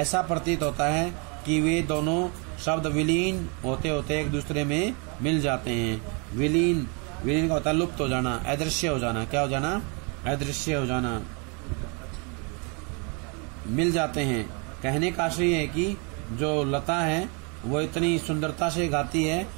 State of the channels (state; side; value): quieter; left; 34.1 dB